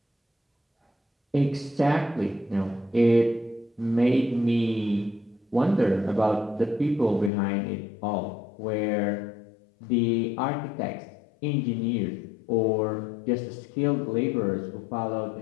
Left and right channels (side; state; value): right; drops out; at 7.3 s